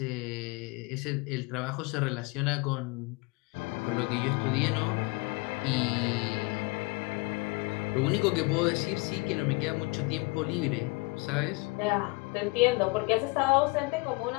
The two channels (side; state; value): right; quieter; 26.4 dB